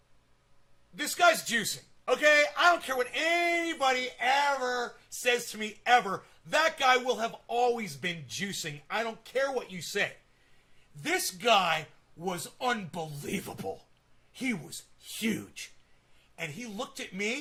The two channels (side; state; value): both; identical; correlation 1.00